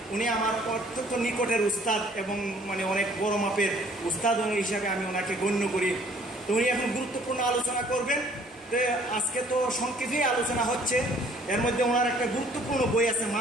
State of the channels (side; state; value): both; normal; correlation 0.57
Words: উনি আমার অত্যন্ত নিকটের উস্তাদ এবং মানে অনেক বড় মাপের উস্তাদ হিসাবে আমি ওনাকে গণ্য করি। তো উনি এখন গুরুত্বপূর্ণ আলোচনা করবেন। তো আজকে তো সংক্ষেপে আলোচনা হচ্ছে, এর মধ্যে ওনার একটা গুরুত্বপূর্ণ বই আছে